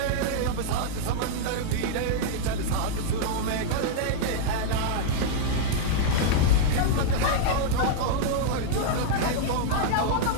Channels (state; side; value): different; both; correlation -0.01